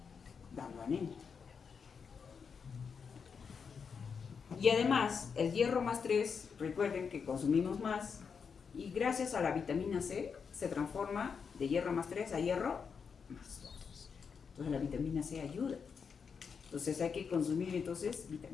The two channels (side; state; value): right; quieter; 6.1 dB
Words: dando anemia. Y además, el hierro más 3, recuerden que consumimos más, y gracias a la vitamina C se transforma de hierro más 3 a hierro más 2. Entonces la vitamina C ayuda. Entonces hay que consumir entonces